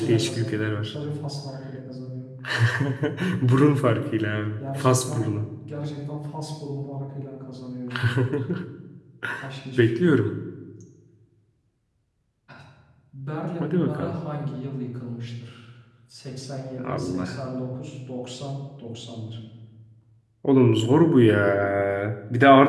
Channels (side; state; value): both; identical; correlation 1.00